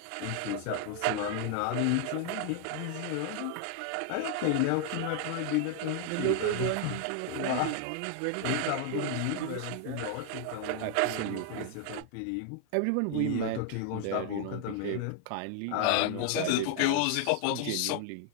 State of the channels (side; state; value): both; different; correlation 0.00